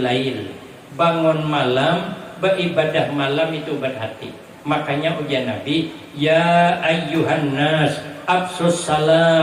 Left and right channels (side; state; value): both; identical; correlation 1.00